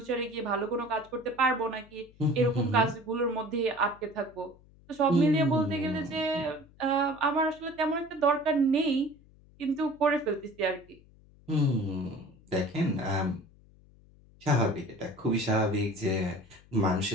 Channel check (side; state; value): left; noise; hum, 26 dB below the sound